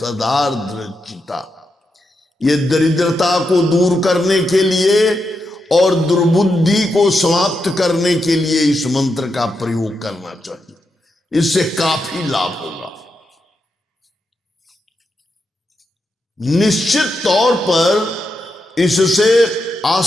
चिता। ये दरिद्रता को दूर करने के लिए और दुर्बुद्धि को समाप्त करने के लिए इस मंत्र का प्रयोग करना चाहिए, इससे काफी लाभ होगा। निश्चित तौर पर इससे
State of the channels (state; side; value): normal; both; correlation 0.85